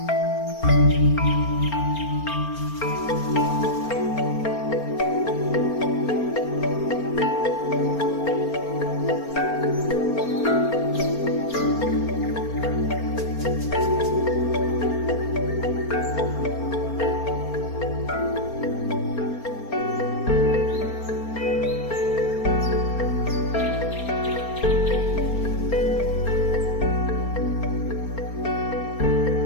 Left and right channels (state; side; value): late; right; 4.3 ms